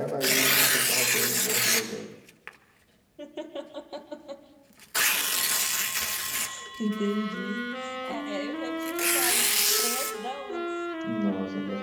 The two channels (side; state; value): both; identical; correlation 1.00